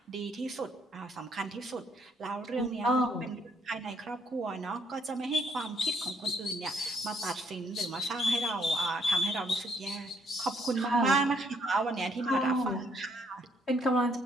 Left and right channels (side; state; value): both; normal; correlation 0.69